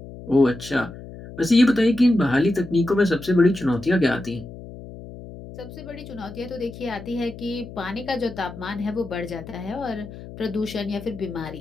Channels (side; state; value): left; noise; hum, 14 dB below the sound